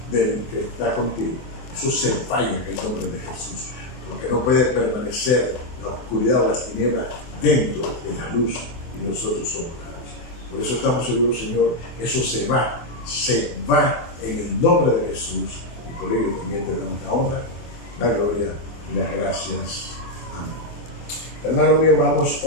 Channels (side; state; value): right; late; 24 ms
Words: del que está contigo, eso se falla en el nombre de Jesús, porque no puede permanecer la oscuridad o las tinieblas dentro de la luz, y nosotros somos la luz. Por eso estamos seguros, Señor, que eso se va en el nombre de Jesús, y por ello también te damos la honra, la gloria y las gracias. Amén. Hermano mío, vamos